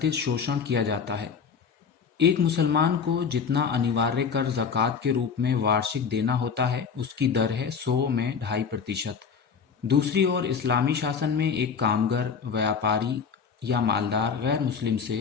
शोषण किया जाता है। एक मुसलमान को जितना अनिवार्य कर ज़कात के रूप में वार्षिक देना होता है, उसकी दर है 100 में 2.5%। दूसरी ओर इस्लामी शासन में एक कामगर, व्यापारी या मालदार गैर मुस्लिम से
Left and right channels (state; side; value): quieter; right; 6.2 dB